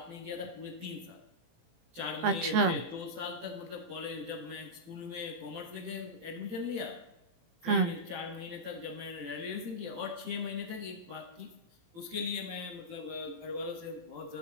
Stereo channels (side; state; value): left; late; 18 ms